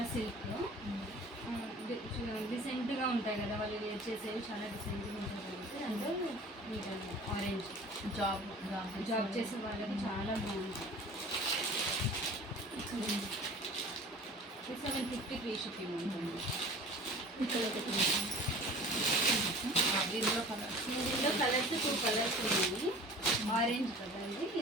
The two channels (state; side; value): normal; both; correlation 0.43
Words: సిల్క్లో డిసెంట్గా ఉంటాయి కదా వాళ్ళు వేర్ చేసేవి చాలా డిసెంట్గా ఉంటాయి కాబట్టి అంటే మీకు ఆరెంజ్ జాబ్ చేసే వాళ్ళకి చాలా బాగుంటాయి. 750 ఫ్రీ షిప్పింగ్ ఉంటుంది. దీనిలో కలర్స్ దీనిలో కలర్స్ 2 కలర్స్ ఉన్నాయి. ఆరెంజ్ కదండి,